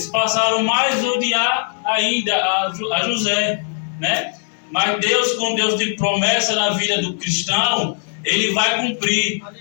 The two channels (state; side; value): silent; right; 66 dB below the other